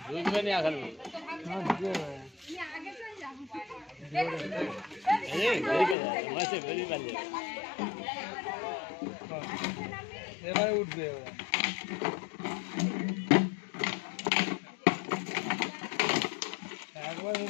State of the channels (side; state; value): right; drops out; at 6.0 s